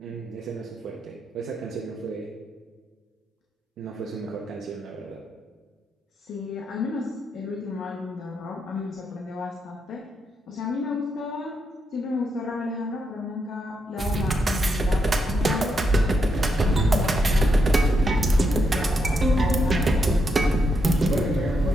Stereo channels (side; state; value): both; normal; correlation 0.81